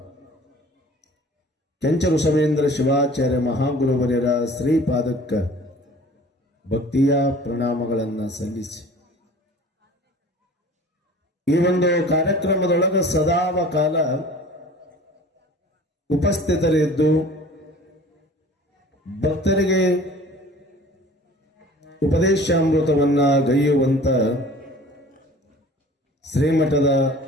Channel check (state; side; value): normal; both; correlation 0.46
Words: ಕೆಂಚ ಋಷಭೇಂದ್ರ ಶಿವಾಚಾರ್ಯ ಮಹಾಗುರುವರ್ಯರ ಶ್ರೀಪಾದಕ್ಕ ಭಕ್ತಿಯ ಪ್ರಣಾಮಗಳನ್ನು ಸಲ್ಲಿಸಿ, ಈ ಒಂದು ಕಾರ್ಯಕ್ರಮದೊಳಗ ಸದಾವಕಾಲ ಉಪಸ್ಥಿತರಿದ್ದು ಭಕ್ತರಿಗೆ ಉಪದೇಶಾಮೃತವನ್ನ ಗೈಯುವಂತ ಶ್ರೀಮಠದ